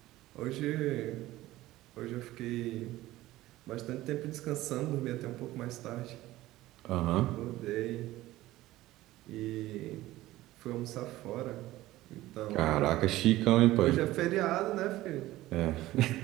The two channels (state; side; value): quieter; left; 16.6 dB